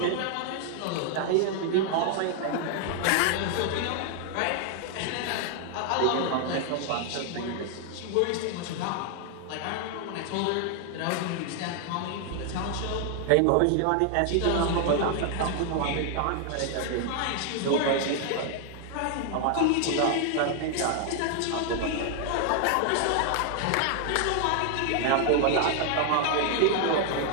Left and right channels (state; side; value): different; both; correlation 0.00